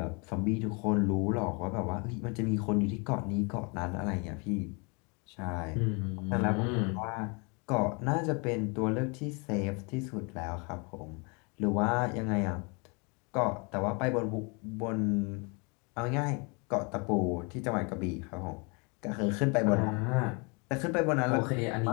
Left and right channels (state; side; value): quieter; right; 32.1 dB